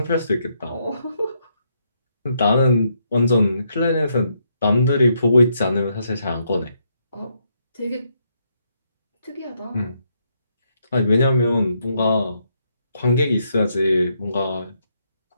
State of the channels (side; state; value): both; inverted; correlation -0.76